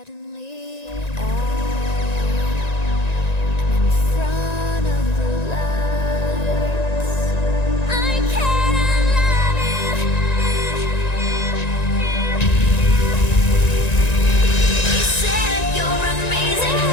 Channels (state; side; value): late; right; 1.9 ms